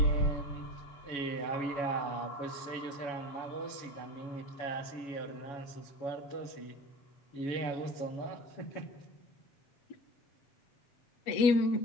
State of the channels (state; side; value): late; right; 7.1 ms